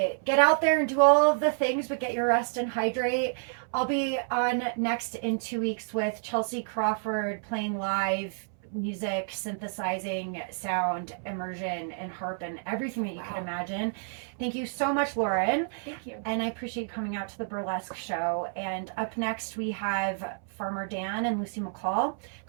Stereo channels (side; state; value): left; silent; 58 dB below the other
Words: Get out there and do all of the things, but get your rest and hydrate. I'll be on next in 2 weeks with Chelsea Crawford playing live music, synthesizing, sound, immersion, and harp, and everything that you can imagine. Thank you so much, Lauren. Thank you. And I appreciate coming out to the burlesque show. And up next, we have Farmer Dan and Lucy McCall.